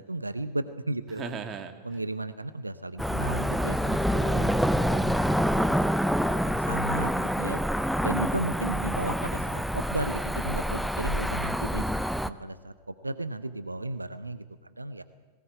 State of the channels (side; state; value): both; normal; correlation 0.59